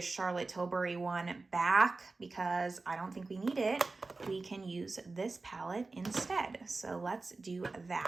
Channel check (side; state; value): left; quieter; 3.6 dB